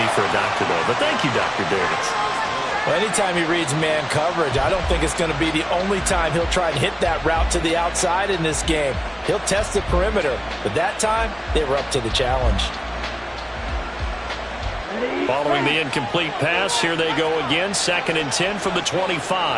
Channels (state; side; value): identical; both; correlation 1.00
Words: for a doctor, though. But thank you, Dr. Davis. Well, anytime he reads man coverage, I don't think it's going to be the only time he'll try and hit that route to the outside in this game. He'll test the perimeter. But that time, they were up to the challenge. Following the incomplete pass, here they go again. 2nd and 10 from the